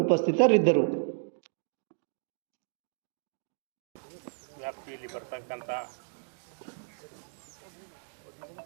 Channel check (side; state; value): left; silent; digital silence